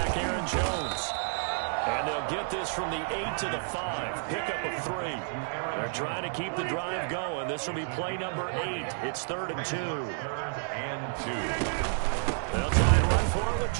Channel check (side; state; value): left; silent; 58 dB below the other